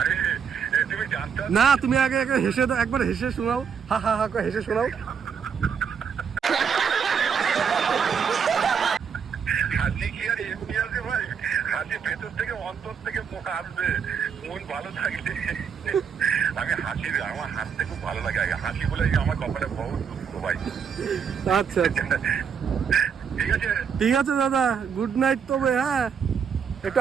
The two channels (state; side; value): quieter; left; 6.9 dB